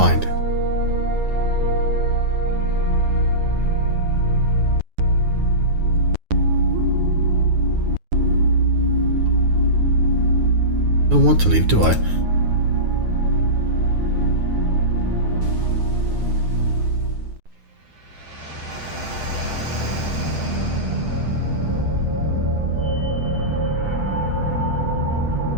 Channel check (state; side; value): late; left; 9.5 ms